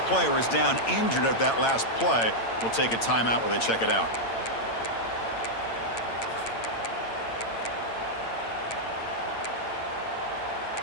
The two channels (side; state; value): right; late; 8.8 ms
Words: player is down injured at that last play. We'll take a timeout while they check it out.